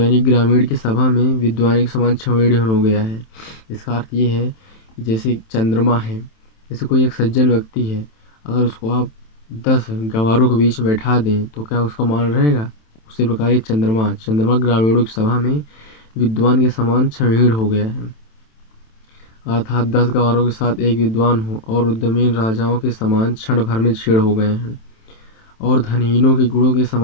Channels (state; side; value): late; right; 27 ms